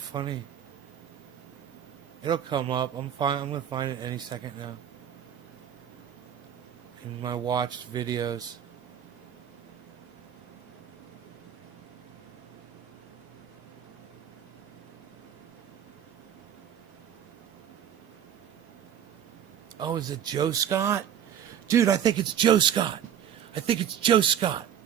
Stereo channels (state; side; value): quieter; left; 9.4 dB